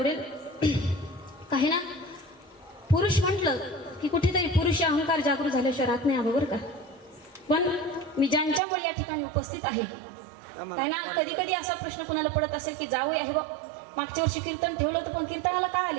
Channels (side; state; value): left; drops out; at 8.6 s